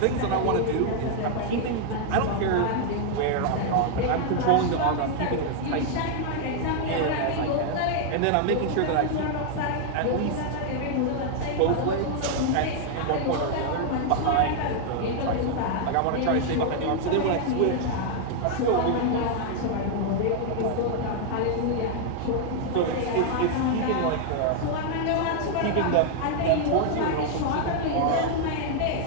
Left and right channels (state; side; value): different; both; correlation 0.00